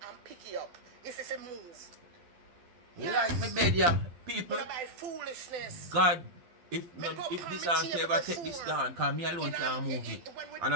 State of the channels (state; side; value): late; left; 12 ms